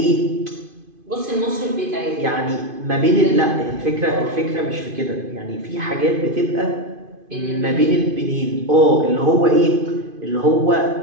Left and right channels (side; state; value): left; late; 2.5 ms